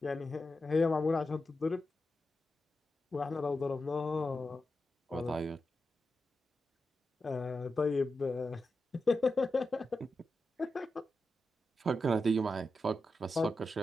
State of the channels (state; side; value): normal; both; correlation 0.89